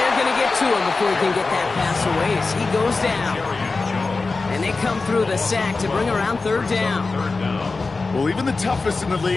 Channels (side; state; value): right; quieter; 3.9 dB